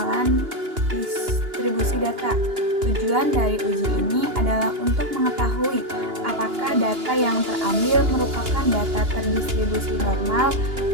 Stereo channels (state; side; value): late; left; 2.9 ms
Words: distribusi data. Tujuan dari uji ini adalah untuk mengetahui apakah data yang terambil merupakan data terdistribusi normal